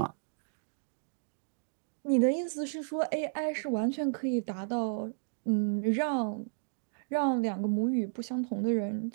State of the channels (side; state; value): left; silent; digital silence